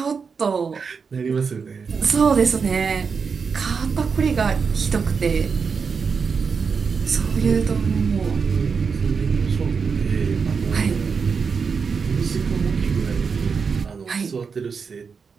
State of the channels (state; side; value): quieter; left; 5.6 dB